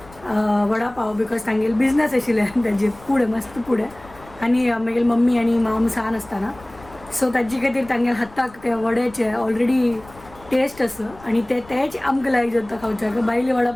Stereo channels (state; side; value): noise; left; rumble, 22 dB below the sound